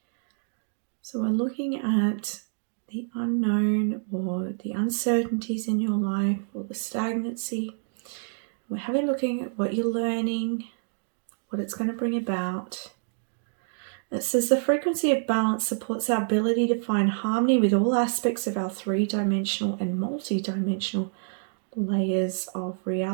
So we're looking at the unknown or the uncertainties in your life or the stagnancy. We're having looking at what you're learning, what it's going to bring about. It says the frequency of balance supports our ability to find harmony with all aspects of our 3-dimensional and multi-dimensional layers of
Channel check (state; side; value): silent; left; digital silence